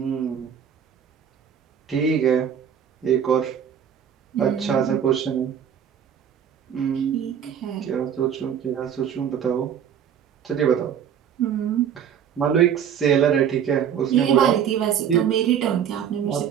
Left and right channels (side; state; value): left; quieter; 8.6 dB